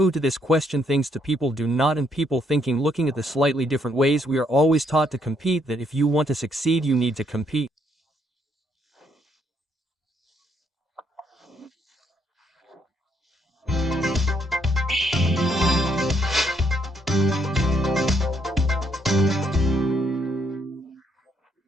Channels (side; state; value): both; normal; correlation 0.72